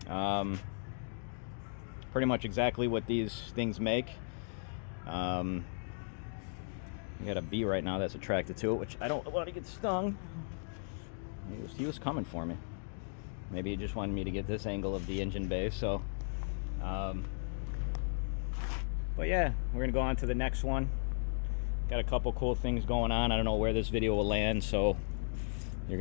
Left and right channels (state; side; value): silent; right; digital silence